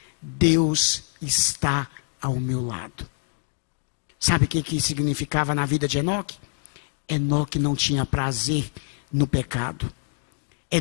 Deus está ao meu lado. Sabe o que significava na vida de Enoque? Enoque não tinha prazer no pecado.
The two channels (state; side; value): silent; right; digital silence